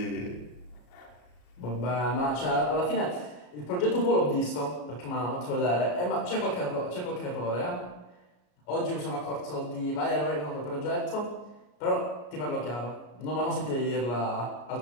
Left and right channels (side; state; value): right; late; 33 ms